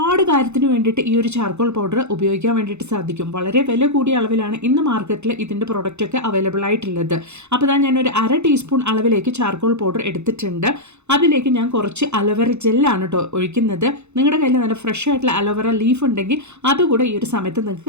കാര്യത്തിന് വേണ്ടിയിട്ട് ഈ ഒരു ചാർക്കോൾ പൗഡർ ഉപയോഗിക്കാൻ വേണ്ടിയിട്ട് സാധിക്കും. വളരെ വില കൂടിയ അളവിലാണ് ഇന്ന് മാർക്കറ്റിൽ ഇതിൻ്റെ പ്രൊഡക്റ്റൊക്കെ അവൈലബിൾ ആയിട്ടുള്ളത്. അപ്പോൾ ഇതാ ഞാനൊരു 1/2 ടീസ്പൂൺ അളവിലേക്ക് ചാർക്കോൾ പൗഡർ എടുത്തിട്ടുണ്ട്. അതിലേക്ക് ഞാൻ കുറച്ച് അലോവേറ ജെല്ലാണ് കേട്ടോ ഒഴിക്കുന്നത്. നിങ്ങളുടെ കയ്യിൽ നല്ല ഫ്രഷ് ആയിട്ടുള്ള അലോവേറ ലീഫ് ഉണ്ടെങ്കിൽ അതുകൂടെ ഈ ഒരു സമയത്ത്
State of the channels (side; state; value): left; late; 0.82 ms